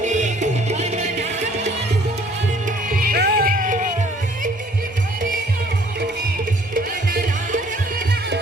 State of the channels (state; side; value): normal; both; correlation 0.58